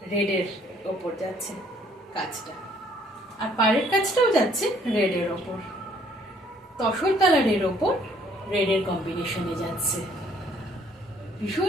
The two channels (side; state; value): both; normal; correlation 0.62